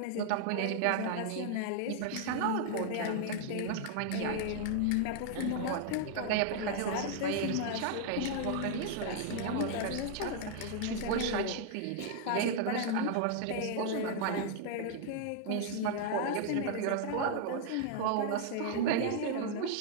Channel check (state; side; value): different; both; correlation 0.00